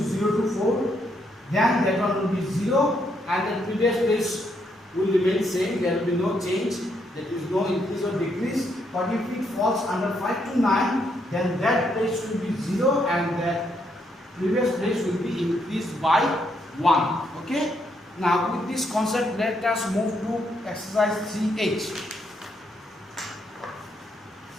to 4, then that one will be 0 and the previous place will remain same, there will be no change, there is no increase or decrease. But if it falls under 5 to 9, then that place will be 0 and that previous place will be increased by 1. Okay, now with this concept let us move to exercise 3H.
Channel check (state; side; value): normal; both; correlation 0.75